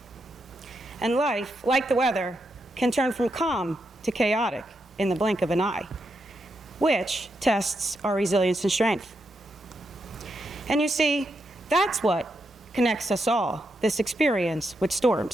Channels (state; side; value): normal; both; correlation 0.83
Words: And life, like the weather, can turn from calm to chaotic in the blink of an eye, which tests our resilience and strength. And you see, that's what connects us all, this experience with